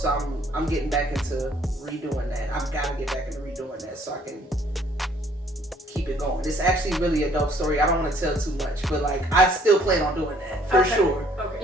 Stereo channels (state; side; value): normal; both; correlation 0.61